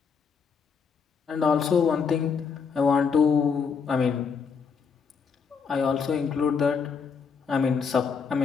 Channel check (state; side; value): quieter; right; 6.0 dB